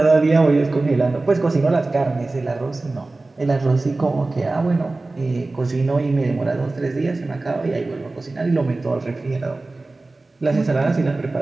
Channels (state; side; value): quieter; left; 3.2 dB